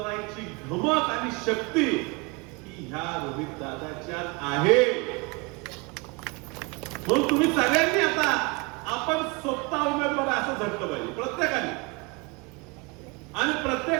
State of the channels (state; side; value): quieter; left; 28.0 dB